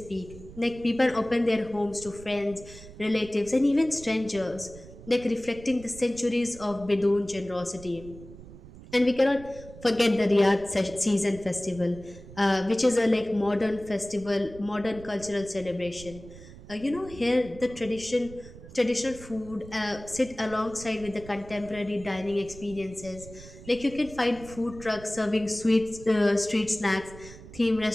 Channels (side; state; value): right; noise; rumble, 17 dB below the sound